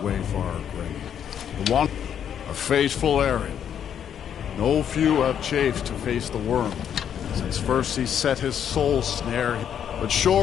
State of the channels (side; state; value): right; quieter; 8.9 dB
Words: Wayfarer Gray? The one, a faithful errand. No few have chafed to face the worm, since first he set his soul snare, but